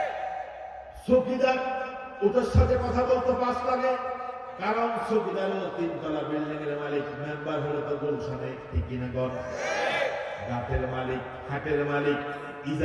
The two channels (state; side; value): identical; both; correlation 1.00